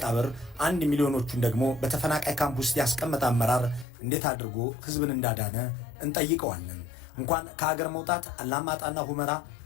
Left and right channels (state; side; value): drops out; right; at 3.9 s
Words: 1 ሚሊዮኖቹን ደግሞ በተፈናቃይ ካምፕ ውስጥ ያስቀመጠ አመራር እንዴት አድርጎ ህዝብን እንዳዳነ እንጠይቀዋለን። እንኳን ከሀገር መውጣት አላማጣና ሁመራ